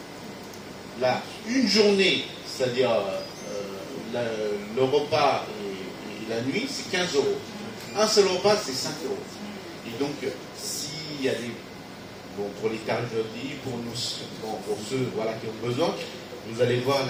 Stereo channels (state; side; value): identical; both; correlation 1.00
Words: Là, une journée, c'est-à-dire le repas et la nuit, c'est 15 €. Un seul repas, c'est 5 €. Et donc, s'il y a des... Bon, pour les tarifs pour nous, pour ceux voilà, qui ont besoin, vous allez voir